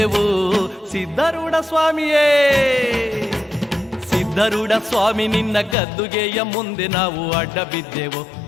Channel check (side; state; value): right; drops out; at 5.8 s